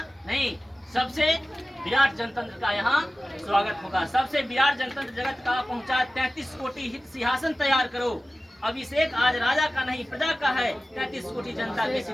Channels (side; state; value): both; normal; correlation 0.96